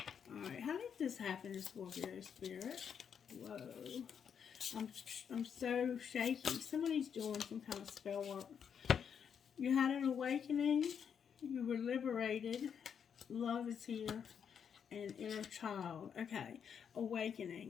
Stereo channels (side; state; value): right; quieter; 7.5 dB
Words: Alright, how did this happen to Scorpio, Spirit? Whoa. I'm so shaky. Somebody's doing some kind of spell work. You had an awakening. You were liberated. Love is here. And inner child. Okay.